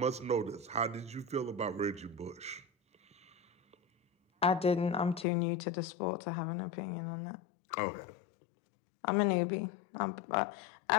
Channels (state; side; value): drops out; right; at 5.2 s